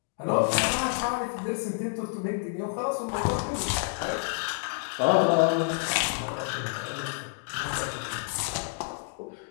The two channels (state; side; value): silent; right; digital silence